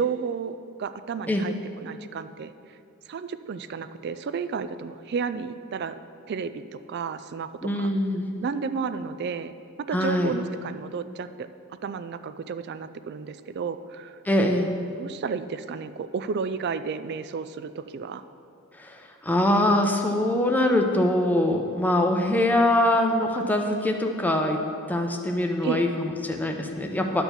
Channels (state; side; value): normal; both; correlation 0.53